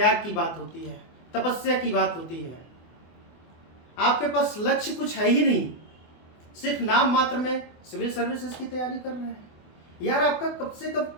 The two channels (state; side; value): late; right; 24 ms